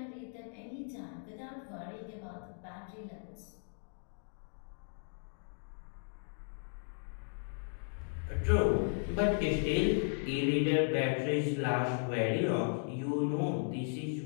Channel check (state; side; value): silent; right; digital silence